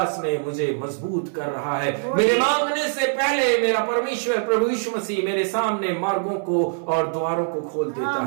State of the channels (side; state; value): left; silent; digital silence